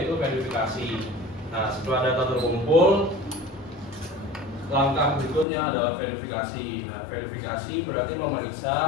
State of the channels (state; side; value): drops out; right; at 5.5 s